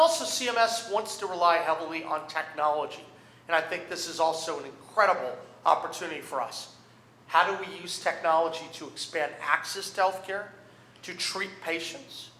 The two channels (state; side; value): identical; both; correlation 1.00